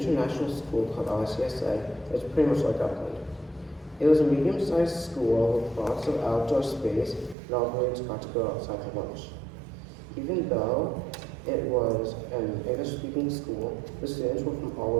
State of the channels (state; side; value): drops out; left; at 7.4 s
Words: school called ICSA. It's pretty much like Upland. It was a medium-sized school with lots of outdoor space, and all the grades got to go outside for lunch. Even though it was an English-speaking school, the students were from all